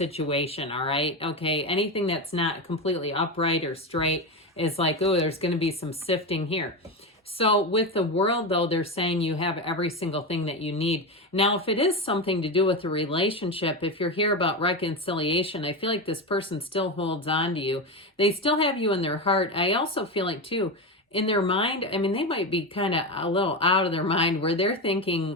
all right? Okay, anything that's not completely upright or straight is like, oh, there's going to be some sifting here. So with the World, though, they're saying you have every single thing that you need. Now, if it is something to do with a relationship, if you're here about reconciliation, I feel like this person still holds on to you. They still have you in their heart. I also feel like, too, in their mind, I mean, they might be kind of a little out of their mind where they're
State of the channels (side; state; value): both; normal; correlation 0.17